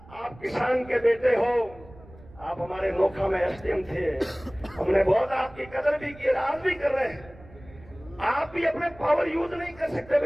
आप किसान के बेटे हो, आप हमारे नोखा में एसडीएम थे, हमने बहुत आपकी कदर भी की, आज भी कर रहे हैं। आप भी अपने पावर यूज नहीं कर सकते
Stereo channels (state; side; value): noise; right; rumble, 21 dB below the sound